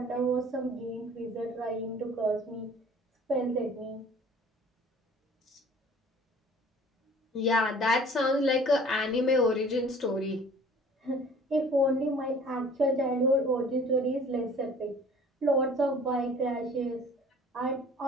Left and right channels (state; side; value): normal; both; correlation 0.50